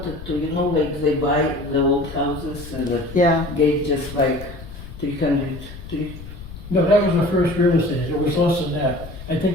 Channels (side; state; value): left; noise; rumble, 13 dB below the sound